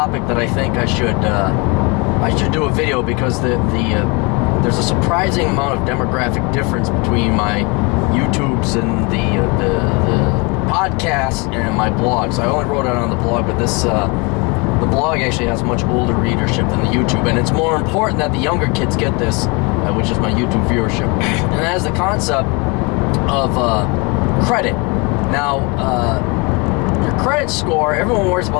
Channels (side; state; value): right; quieter; 29.5 dB